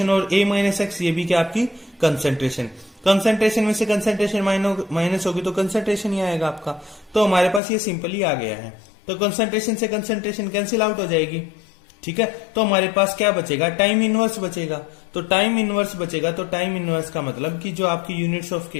और ए माइनस एक्स ये भी क्या आपकी कंसंट्रेशन। कंसंट्रेशन में से कंसंट्रेशन माइनस होगी तो कंसंट्रेशन ही आएगा आपका। तो हमारे पास ये सिंपली आ गया है। तो कंसंट्रेशन से कंसंट्रेशन कैंसिल आउट हो जाएगी। ठीक है, तो हमारे पास क्या बचेगा, टाइम इनवर्स बचेगा। तो टाइम इनवर्स बचेगा, तो टाइम इनवर्स का मतलब कि जो आपकी यूनिट्स ऑफ के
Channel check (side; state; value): right; drops out; at 7.6 s